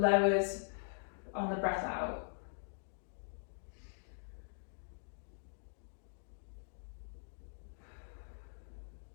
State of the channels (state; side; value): silent; right; digital silence